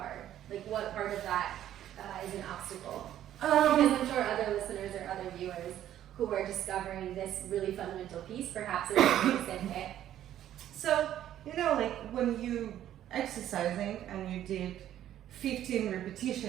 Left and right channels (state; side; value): quieter; left; 11.7 dB